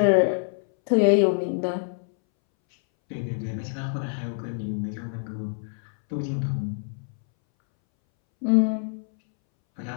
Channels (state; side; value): silent; right; 61 dB below the other